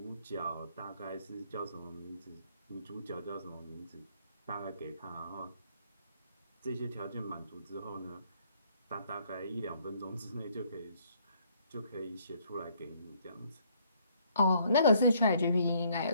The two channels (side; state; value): both; inverted; correlation -0.66